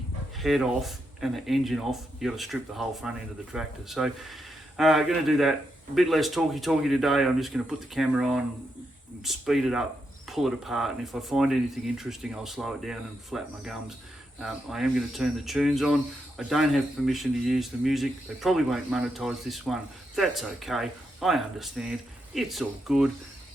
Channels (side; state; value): both; normal; correlation 0.83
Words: head off and the engine off, you got to strip the whole front end of the tractor. So going to do that. A bit less talky today. I'm just going to put the camera on, speed it up, pull it apart, and if I find anything interesting, I'll slow it down and flap my gums. I am going to turn the tunes on. I don't have permission to use the music. They probably won't monetize this one. That's okay. I understand. It's all good.